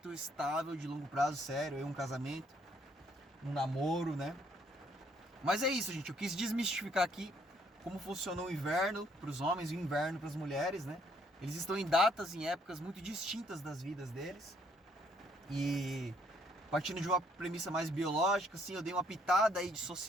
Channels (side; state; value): both; normal; correlation 0.67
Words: estável, de longo prazo, sério, um casamento, um namoro, né? Mas é isso, gente, eu quis desmistificar aqui como funciona o inverno para os homens e o inverno para as mulheres, né? Eles estão em datas, em épocas muito distintas das vidas deles. E partindo de uma premissa mais biológica, assim, eu dei uma pitada aí de